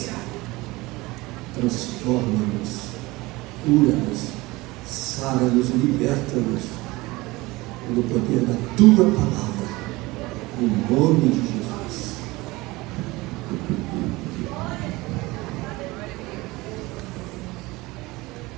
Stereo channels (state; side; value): quieter; left; 21.3 dB